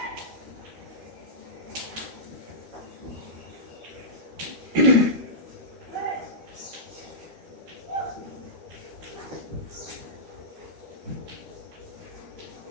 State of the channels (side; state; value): left; late; 13 ms